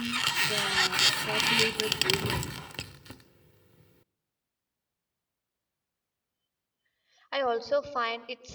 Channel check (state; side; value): identical; both; correlation 1.00